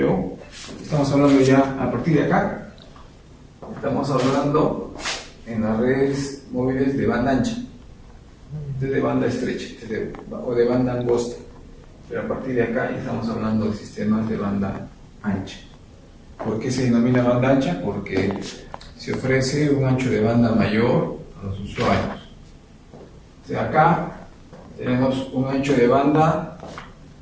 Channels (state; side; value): identical; both; correlation 1.00